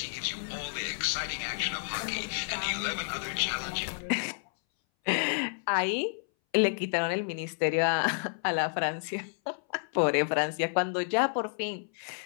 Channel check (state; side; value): silent; right; 58 dB below the other